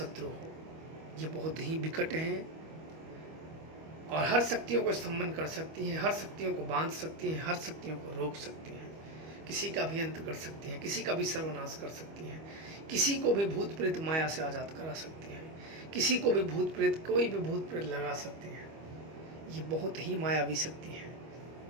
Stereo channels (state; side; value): late; left; 25 ms